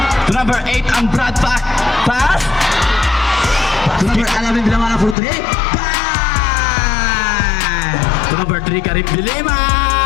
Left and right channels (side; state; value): right; drops out; at 5.2 s